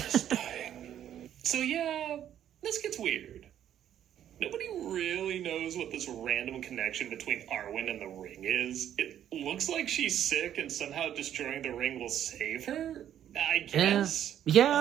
is dying. So yeah, this gets weird. Nobody really knows what this random connection between Arwen and the ring is. It looks like she's sick and somehow destroying the ring will save her, I guess.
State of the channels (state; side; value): quieter; left; 10.5 dB